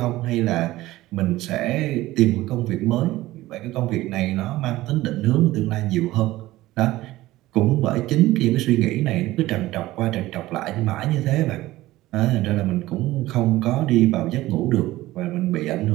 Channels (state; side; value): quieter; left; 17.1 dB